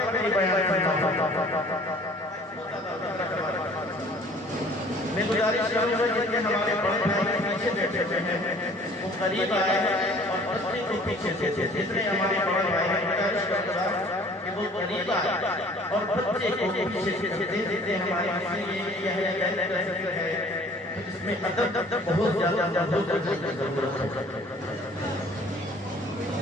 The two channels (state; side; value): normal; both; correlation 0.52